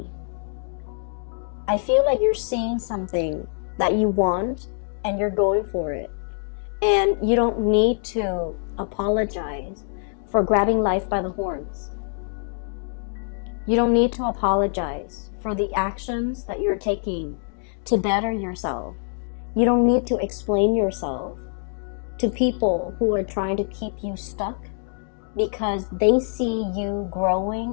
I feel like you're seeing something that you want and you're going for it. And you don't need to apologize for grabbing life by the horns. You don't need to apologize for the actions that you're taking to better yourself. You don't need to explain yourself to people who are trying to keep you stuck because they see you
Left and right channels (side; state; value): right; silent; 62 dB below the other